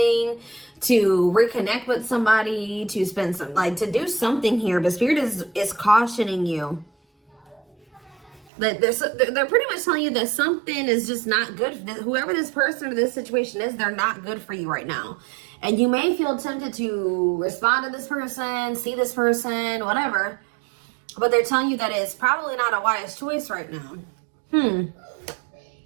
to reconnect with somebody, to spend some, to do something here. But Spirit is cautioning you. They're pretty much telling you that something is just not good. Whoever this person or this situation is, they're not good for you right now. And you may feel tempted to respond to this person, see this person, whatever. But they're telling you that it's probably not a wise choice right now.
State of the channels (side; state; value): left; drops out; at 8.5 s